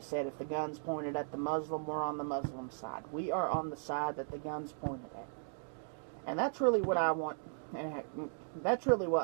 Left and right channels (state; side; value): silent; left; digital silence